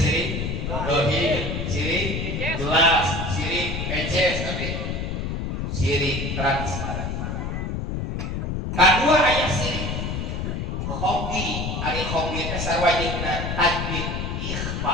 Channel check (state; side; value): noise; left; rumble, 3 dB below the sound